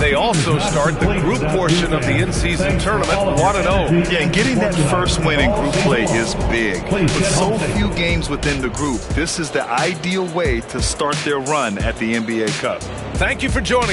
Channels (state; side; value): identical; both; correlation 1.00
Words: also start the group portion of the in-season tournament 1-0. Yeah, and getting that first win in group play is big. With so few games within the group, this is the ideal way to start their run at the NBA Cup. Thank you for